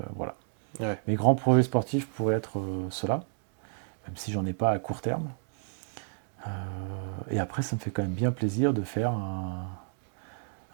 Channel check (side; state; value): left; silent; 57 dB below the other